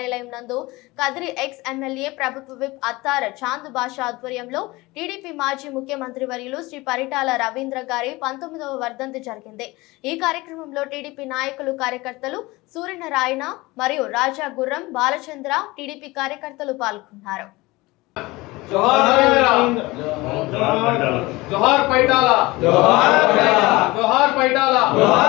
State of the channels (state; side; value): quieter; right; 21.5 dB